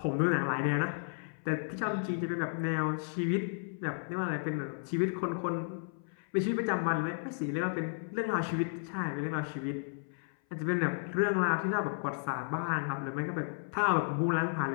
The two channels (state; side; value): silent; right; 56 dB below the other